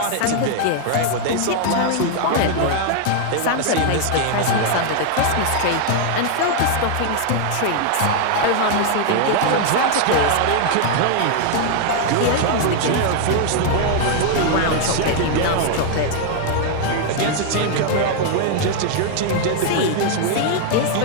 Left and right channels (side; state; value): both; different; correlation 0.00